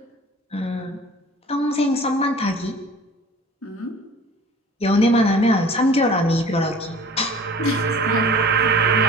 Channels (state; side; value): normal; both; correlation 0.45